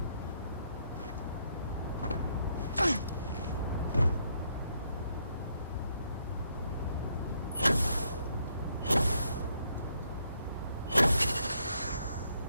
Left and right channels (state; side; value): inverted; both; correlation -0.73